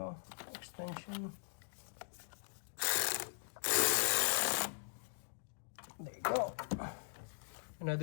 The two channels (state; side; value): silent; right; digital silence